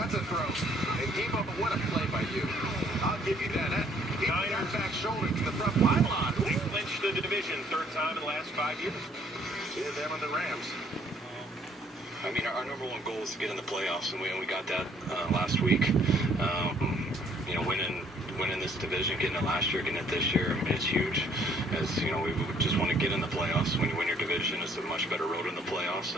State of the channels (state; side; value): normal; both; correlation 0.62